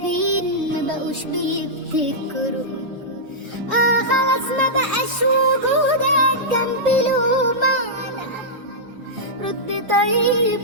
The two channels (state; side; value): normal; both; correlation -0.11